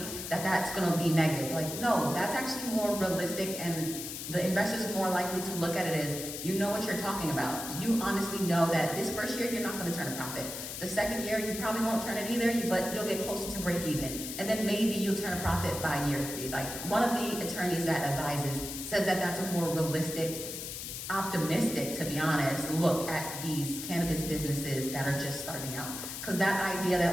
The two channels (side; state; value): left; noise; hiss, 7 dB below the sound